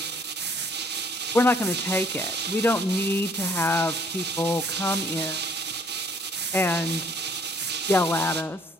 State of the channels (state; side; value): normal; both; correlation 0.61